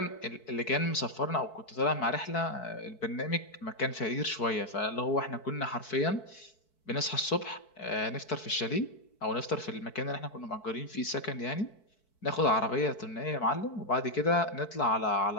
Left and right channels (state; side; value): late; right; 4.6 ms